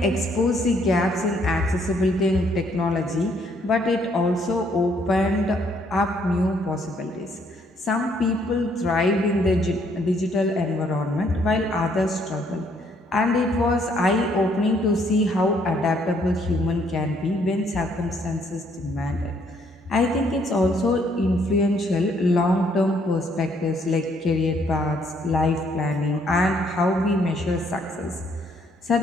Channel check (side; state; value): both; normal; correlation 0.67